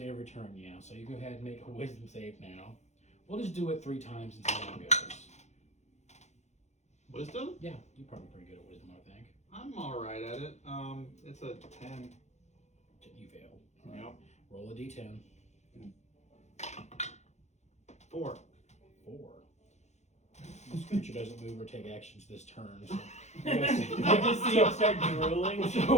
turn, yeah. So you go ahead and make a wisdom save now. We'll just do it 3 times and see how it goes. Wisdom? Yeah, you're probably pretty good at wisdom, I think. I'm all right at it. It's a 10. You fail. Yep. Roll a d10. 4. 4. This creature doesn't move or take actions this turn. So I just see him start drooling.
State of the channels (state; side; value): late; right; 0.33 ms